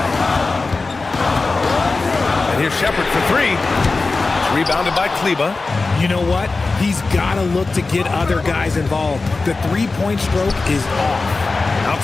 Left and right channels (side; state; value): right; quieter; 3.8 dB